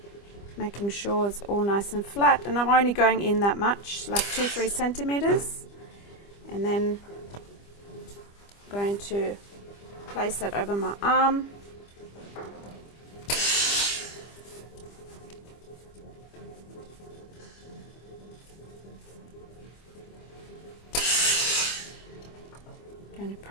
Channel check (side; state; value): right; late; 25 ms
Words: Making sure it's all nice and flat, and I'm only going in that much, like 2-3 centimeters, and then I'm going to place that over my arm. Going to